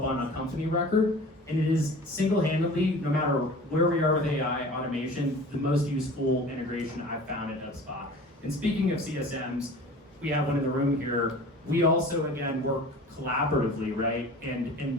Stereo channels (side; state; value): both; normal; correlation 0.41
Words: on a company record. And it is single-handedly, no matter where we are with AI automation, the most useful integration I've found at HubSpot. And speaking of CSMs, we have one in the room here. We also, again, work collaboratively, right?